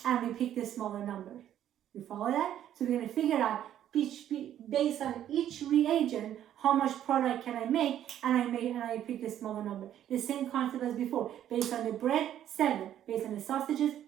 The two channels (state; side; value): quieter; left; 11.1 dB